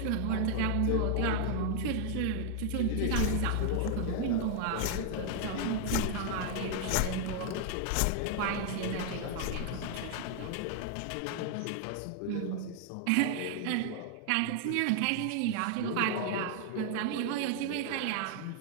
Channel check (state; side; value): different; both; correlation 0.00